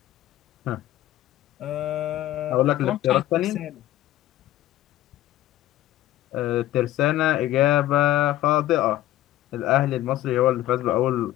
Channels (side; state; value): right; quieter; 14.5 dB